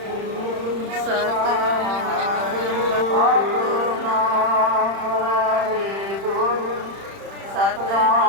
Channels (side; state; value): left; late; 31 ms